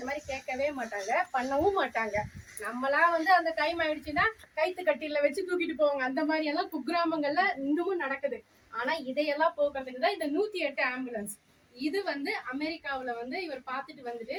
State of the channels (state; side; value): identical; both; correlation 1.00